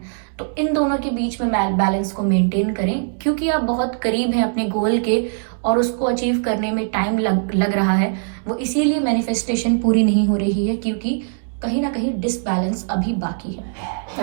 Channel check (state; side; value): silent; left; digital silence